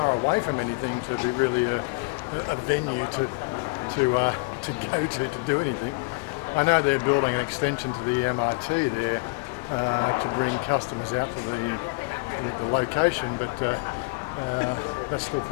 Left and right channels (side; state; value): right; quieter; 29.0 dB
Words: away from anything to be really a venue to go to do anything. I know they're building an extension to the MRT there to bring customers out to the location, but that's still